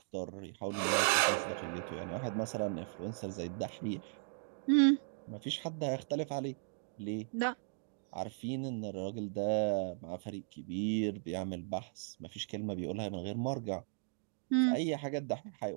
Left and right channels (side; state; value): left; silent; digital silence